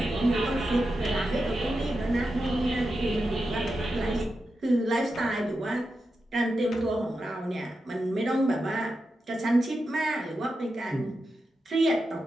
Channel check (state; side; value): normal; both; correlation 0.89